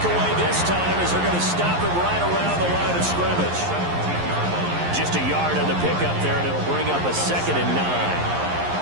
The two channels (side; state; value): left; late; 11 ms